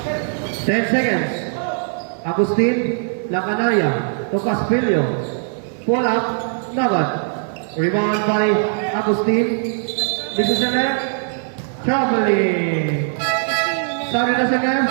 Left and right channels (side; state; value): left; silent; 66 dB below the other